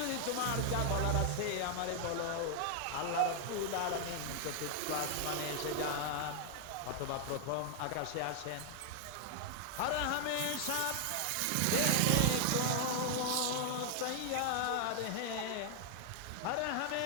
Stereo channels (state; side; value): different; both; correlation 0.00